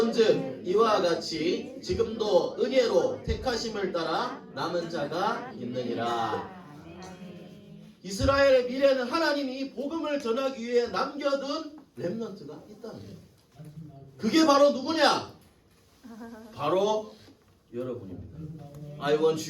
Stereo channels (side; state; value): both; identical; correlation 1.00